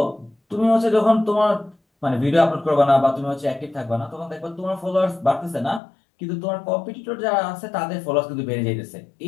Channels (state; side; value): drops out; right; at 5.8 s